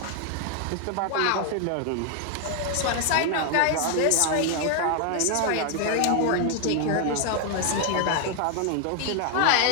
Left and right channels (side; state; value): both; different; correlation 0.00